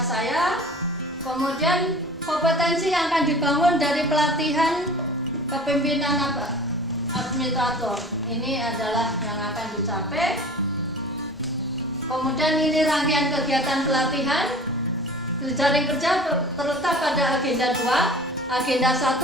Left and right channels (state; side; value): normal; both; correlation 0.42